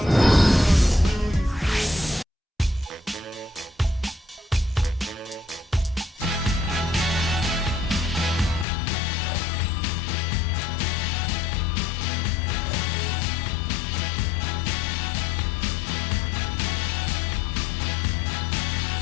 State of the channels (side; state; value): right; drops out; at 8.7 s